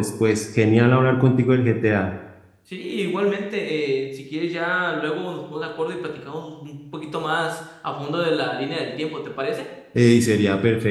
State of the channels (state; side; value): identical; both; correlation 1.00